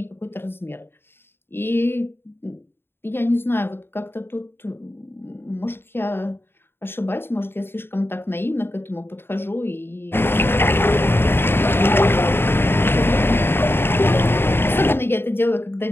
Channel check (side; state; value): right; late; 0.11 ms